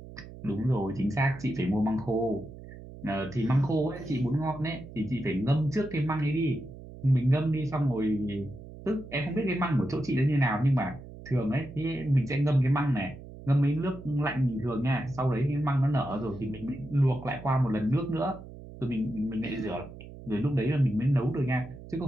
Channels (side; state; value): right; noise; hum, 15 dB below the sound